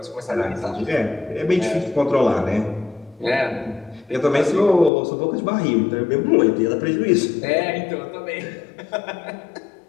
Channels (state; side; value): drops out; right; at 4.9 s